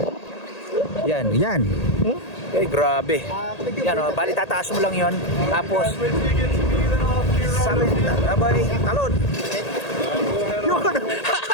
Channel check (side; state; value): right; late; 1.8 ms